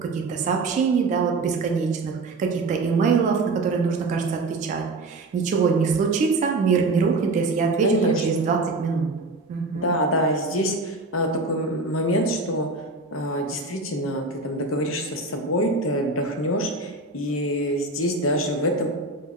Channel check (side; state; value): left; quieter; 3.1 dB